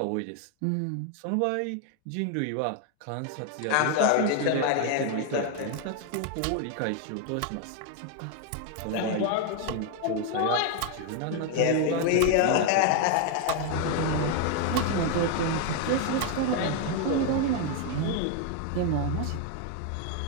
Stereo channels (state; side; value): different; both; correlation 0.01